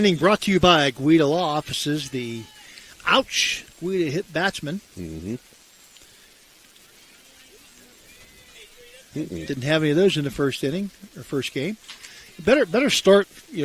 brought to you by Guida Law Offices, the Guida hit batsman. Mm-hmm. Didn't have any of those in the first inning, or first game. Better start.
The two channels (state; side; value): identical; both; correlation 1.00